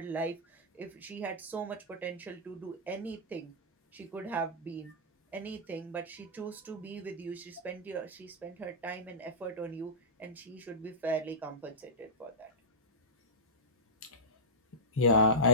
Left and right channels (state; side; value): normal; both; correlation -0.14